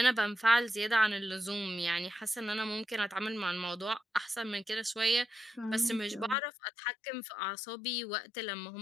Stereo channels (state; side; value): drops out; right; at 6.4 s